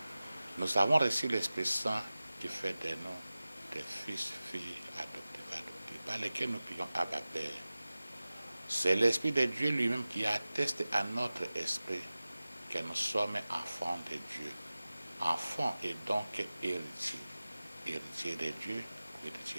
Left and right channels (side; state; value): both; inverted; correlation -0.97